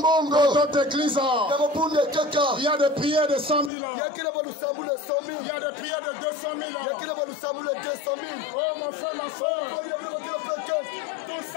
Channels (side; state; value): right; drops out; at 3.7 s